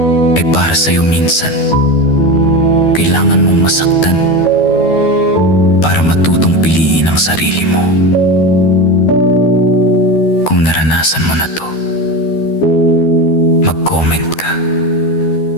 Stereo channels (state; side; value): late; right; 12 ms